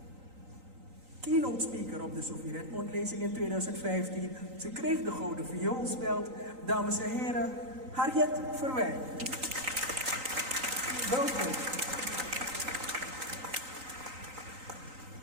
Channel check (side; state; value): left; late; 3.9 ms